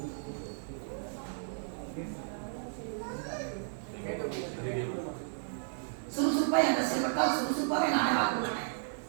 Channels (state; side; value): silent; left; digital silence